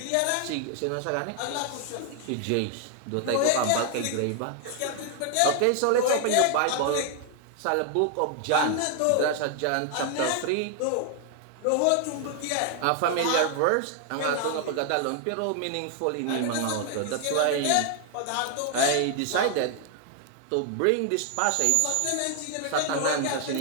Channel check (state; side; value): different; both; correlation 0.00